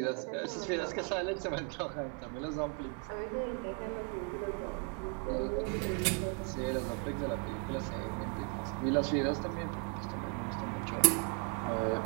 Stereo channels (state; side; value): quieter; left; 36.3 dB